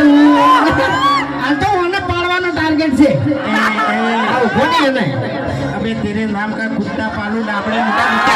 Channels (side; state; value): both; identical; correlation 1.00